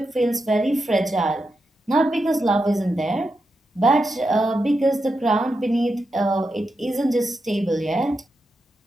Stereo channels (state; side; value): normal; both; correlation 0.87